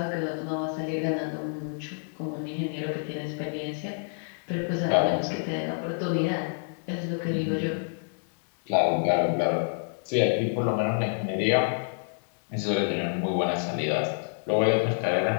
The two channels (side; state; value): right; silent; digital silence